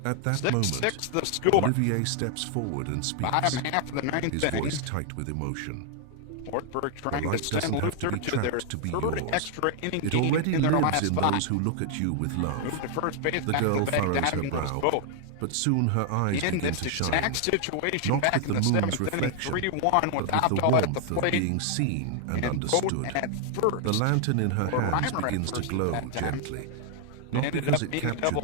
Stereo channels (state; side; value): different; both; correlation 0.00